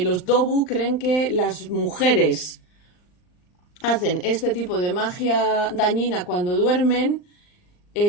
Dobu creen que las mujeres hacen este tipo de magia dañina cuando duermen,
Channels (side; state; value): right; late; 39 ms